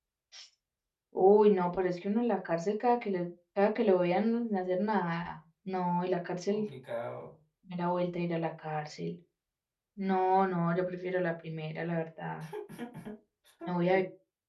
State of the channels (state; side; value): identical; both; correlation 1.00